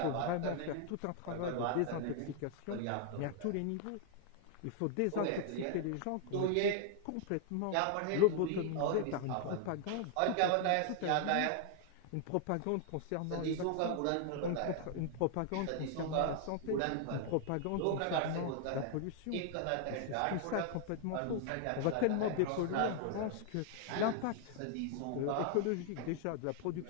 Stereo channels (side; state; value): both; different; correlation 0.00